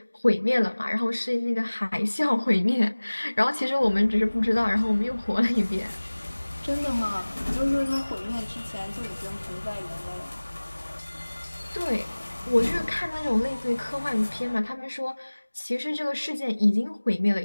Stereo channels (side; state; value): both; inverted; correlation -1.00